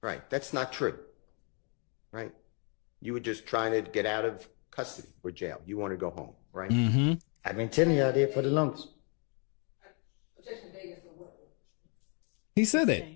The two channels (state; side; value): quieter; right; 36.0 dB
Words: Right. That's not true. Right. You were just trying to get out of custody or jail. You want to go home, right? Mm-hmm. I've been telling y'all that for the longest. He said